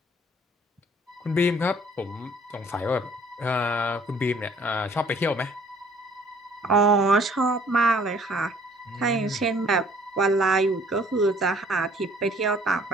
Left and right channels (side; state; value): both; normal; correlation 0.57